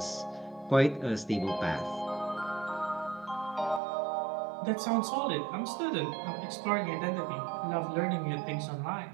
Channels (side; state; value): left; drops out; at 3.8 s